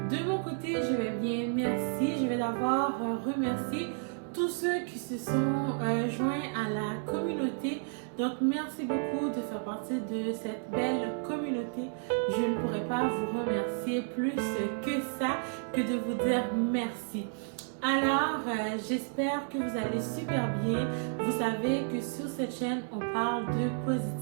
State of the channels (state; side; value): silent; left; 57 dB below the other